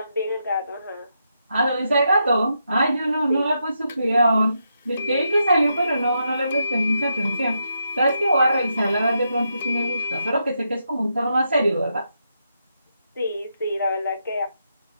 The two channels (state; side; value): inverted; both; correlation -0.82